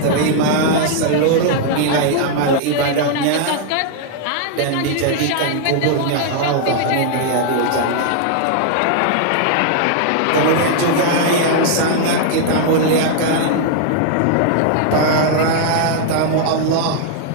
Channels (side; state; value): both; different; correlation 0.00